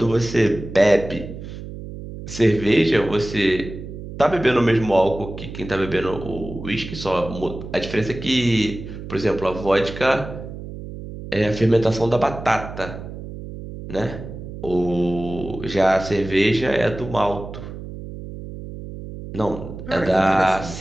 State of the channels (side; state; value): right; noise; hum, 11 dB below the sound